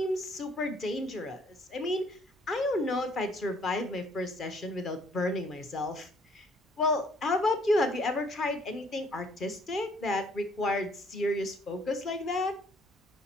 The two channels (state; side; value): normal; both; correlation 0.62